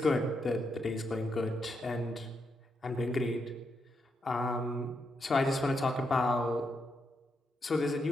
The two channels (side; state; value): both; normal; correlation 0.82